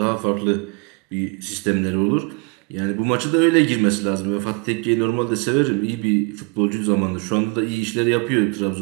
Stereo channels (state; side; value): quieter; left; 31.9 dB